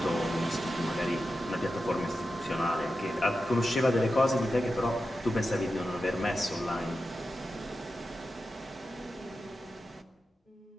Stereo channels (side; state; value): both; normal; correlation 0.91